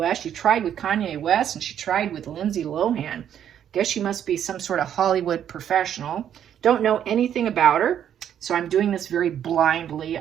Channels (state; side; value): quieter; left; 9.7 dB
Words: she tried with Kanye West and she tried with Lindsay Lohan. Guess she must be some sort of Hollywood professional. Don't know anything about her, so I'm doing this very blindly.